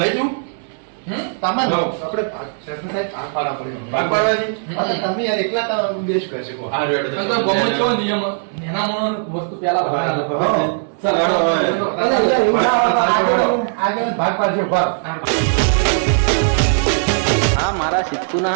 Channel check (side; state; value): left; silent; digital silence